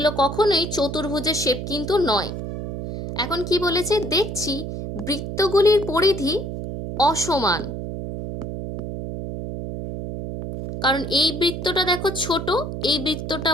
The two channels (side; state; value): right; noise; hum, 6 dB below the sound